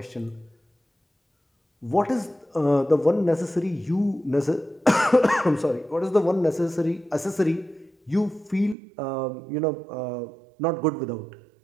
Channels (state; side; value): drops out; left; at 8.8 s